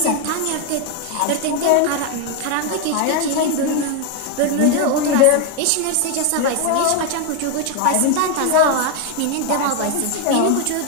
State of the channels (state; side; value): different; both; correlation 0.01